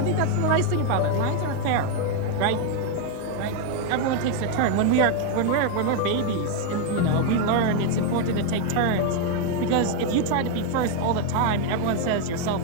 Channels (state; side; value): different; both; correlation 0.01